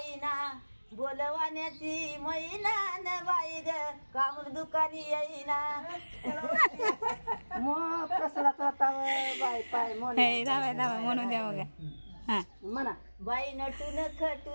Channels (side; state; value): both; inverted; correlation -1.00